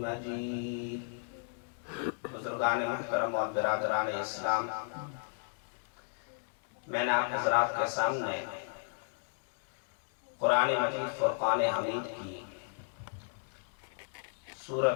مجيد۔ بزرگان محترم اور برادران اسلام، میں نے آپ حضرات کے سامنے قرآن مجید فرقان حمید کی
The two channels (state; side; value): silent; right; digital silence